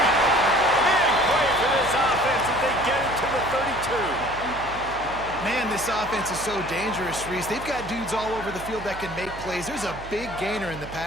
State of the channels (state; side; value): noise; right; hum, 14 dB below the sound